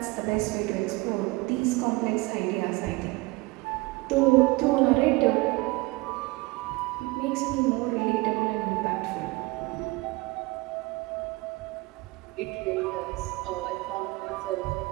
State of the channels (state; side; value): quieter; left; 23.4 dB